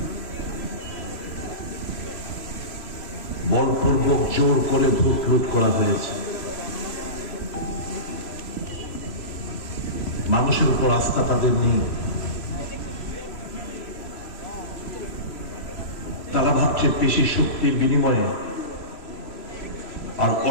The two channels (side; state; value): right; late; 3.0 ms